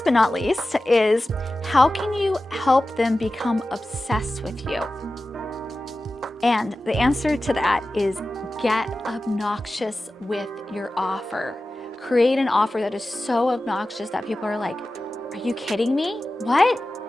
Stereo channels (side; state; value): both; normal; correlation 0.95